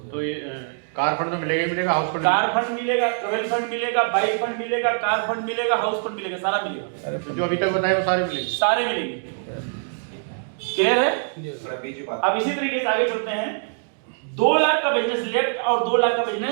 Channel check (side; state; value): left; silent; digital silence